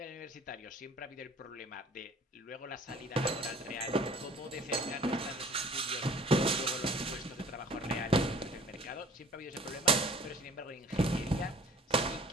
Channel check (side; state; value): both; normal; correlation 0.50